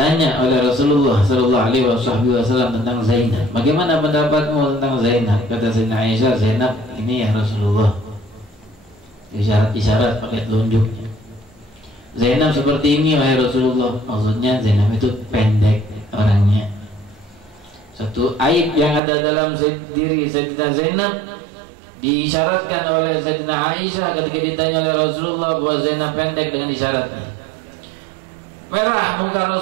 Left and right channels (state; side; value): drops out; left; at 19.0 s